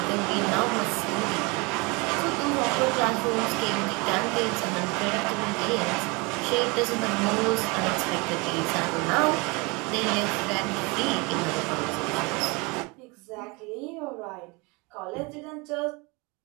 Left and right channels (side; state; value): left; quieter; 27.5 dB